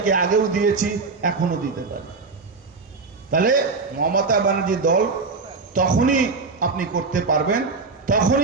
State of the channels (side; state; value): left; quieter; 4.3 dB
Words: আগেও দিয়েছি, এখনো দিতে পারি। তাহলে মমতা ব্যানার্জি দল তখনই আপনি করতে পারবেন,